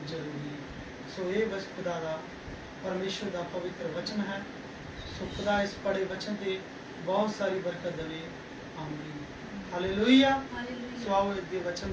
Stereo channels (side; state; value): both; identical; correlation 1.00